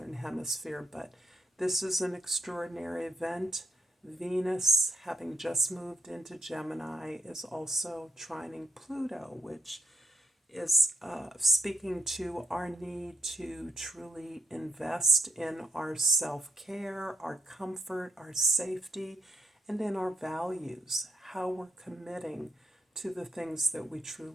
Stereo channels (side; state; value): both; normal; correlation 0.79